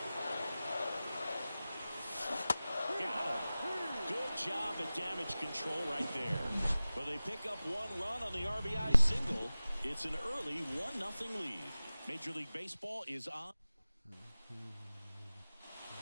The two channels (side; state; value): both; inverted; correlation -0.97